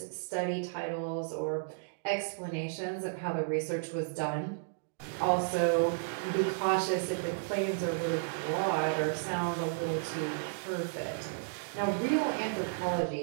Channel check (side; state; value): left; silent; digital silence